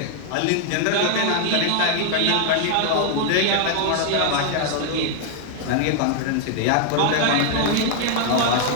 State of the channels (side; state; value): both; different; correlation 0.00